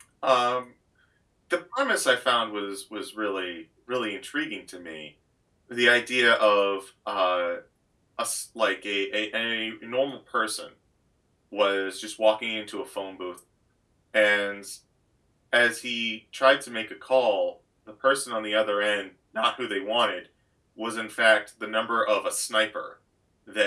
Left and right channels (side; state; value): both; identical; correlation 1.00